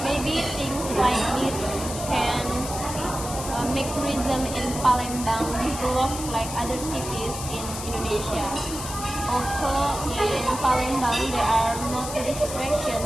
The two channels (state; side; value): noise; left; hiss, 8 dB below the sound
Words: Maybe things like this can make tourism in Palembang develop like other cities in Indonesia. Also, in Palembang, there are no tourist